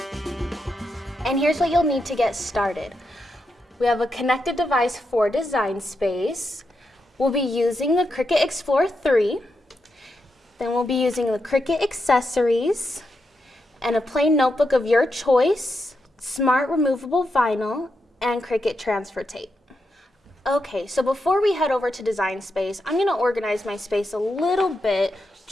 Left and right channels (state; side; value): normal; both; correlation 0.85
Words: And here's what you'll need to get started. We have a connected device for design space. We'll be using the Cricut Explore 3. Then we'll be using the Cricut accessories and a plain notebook of your choice, smart removable vinyl, and Cricut transfer tape. Okay, so before we head over to design space, I'm going to organize my space a little bit